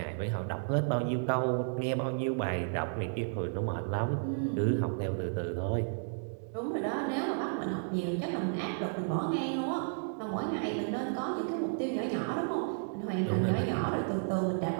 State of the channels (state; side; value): silent; left; digital silence